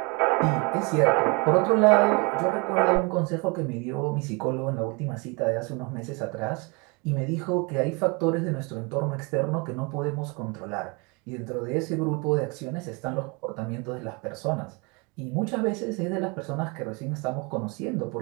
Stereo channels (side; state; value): left; quieter; 29.9 dB